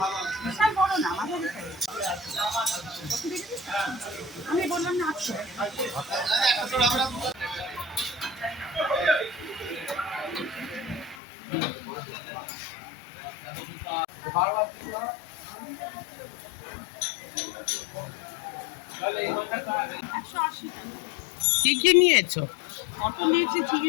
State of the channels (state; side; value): drops out; right; at 11.2 s